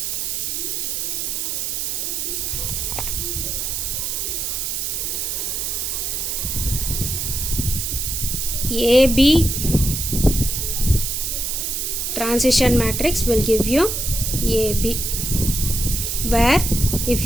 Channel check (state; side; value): noise; right; hiss, 1 dB below the sound